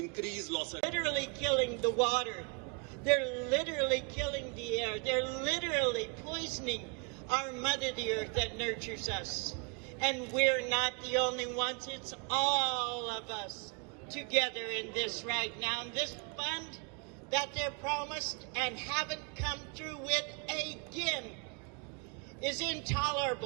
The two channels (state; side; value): quieter; left; 34.1 dB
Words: loss. Literally killing the water. They're literally killing the air. They're literally poisoning our mother, the earth that nurtures us. And we're not the only ones. It's all of us together in this right now. And this fund that they're promised and haven't come through with again is